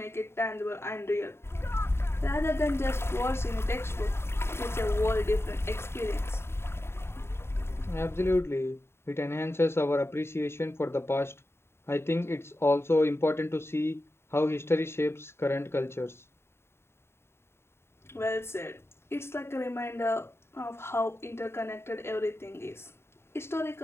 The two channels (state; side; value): late; right; 0.12 ms